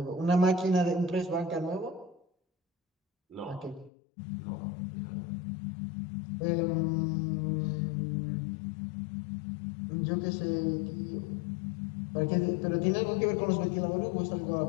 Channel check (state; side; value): drops out; right; at 3.9 s